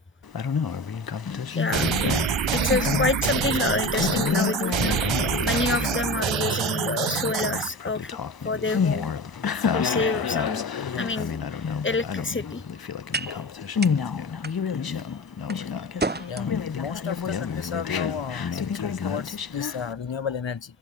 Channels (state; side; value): normal; both; correlation 0.31